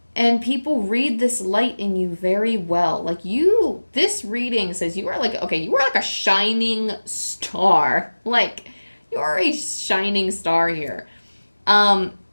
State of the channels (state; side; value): inverted; both; correlation -1.00